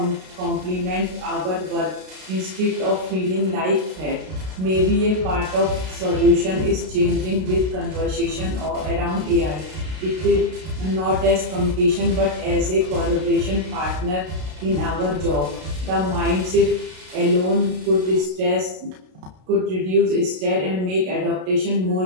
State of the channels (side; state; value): left; late; 32 ms